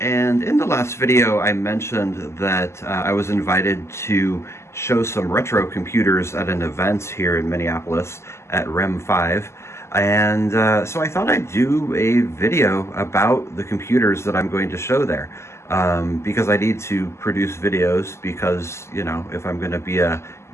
in the last video I mentioned that I was invited to show some retro computers at an event here in Minneapolis at REM 5, and so I thought I'd do a video about the computers that I'm going to show there, because I need to produce videos because, you know, if I'm going to be a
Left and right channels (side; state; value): right; late; 0.13 ms